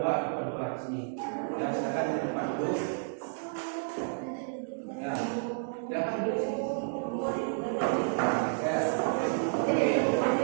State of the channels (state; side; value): silent; left; digital silence